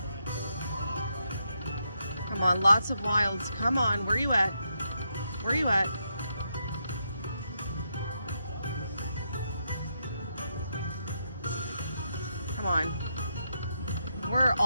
Come on, lots of wilds. Come on, where you at? Come on. Where are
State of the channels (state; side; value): inverted; both; correlation -0.81